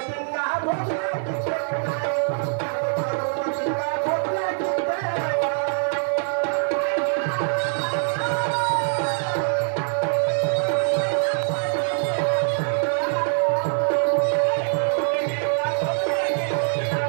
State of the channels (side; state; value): left; silent; 63 dB below the other